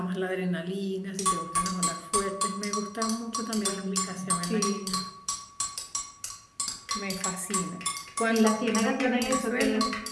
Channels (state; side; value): identical; both; correlation 1.00